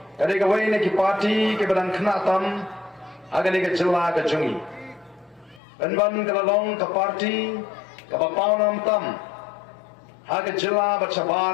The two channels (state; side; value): drops out; right; at 5.6 s